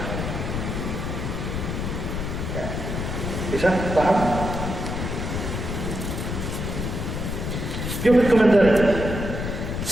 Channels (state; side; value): noise; left; rumble, 3 dB below the sound